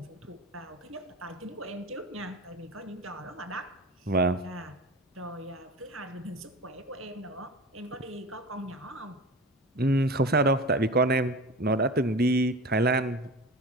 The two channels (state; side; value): normal; both; correlation 0.33